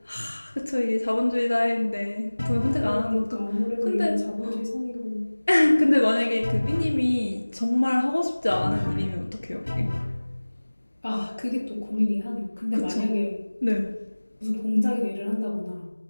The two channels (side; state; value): both; inverted; correlation -1.00